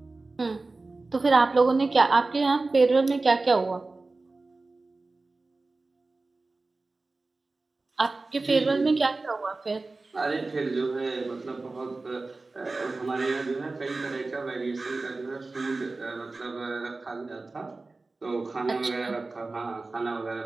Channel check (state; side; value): quieter; left; 3.5 dB